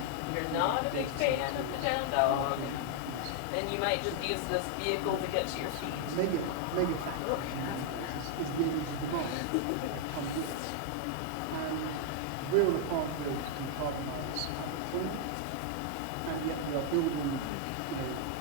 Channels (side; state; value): both; different; correlation 0.00